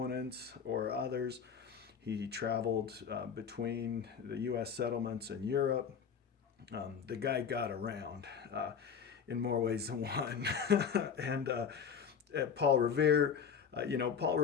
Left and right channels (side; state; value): right; quieter; 6.9 dB